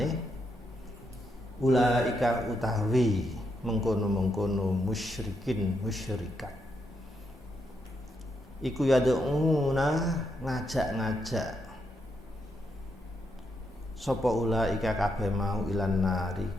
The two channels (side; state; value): both; normal; correlation 0.80